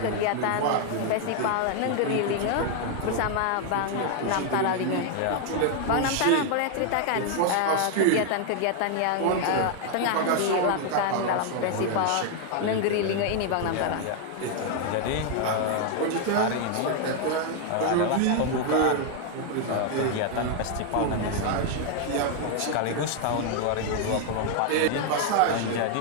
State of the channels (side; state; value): both; different; correlation 0.00